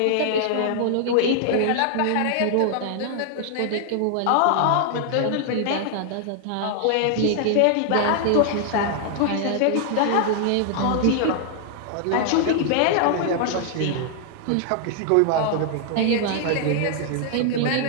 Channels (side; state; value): both; different; correlation 0.00